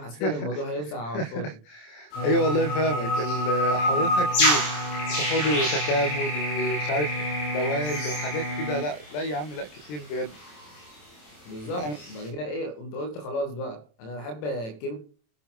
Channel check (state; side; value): late; right; 27 ms